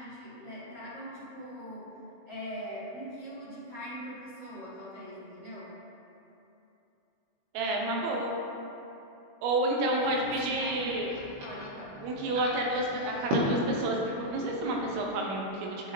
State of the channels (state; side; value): late; left; 21 ms